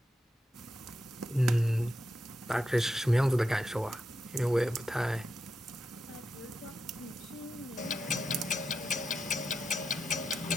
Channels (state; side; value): normal; both; correlation 0.86